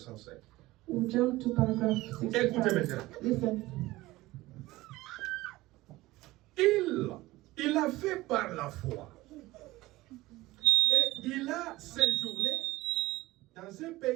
We'll jump to paragraph Écoutez 65. maintenant. Listen. Il a fait par la foi. Et il a séjourné dans un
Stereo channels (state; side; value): quieter; left; 18.6 dB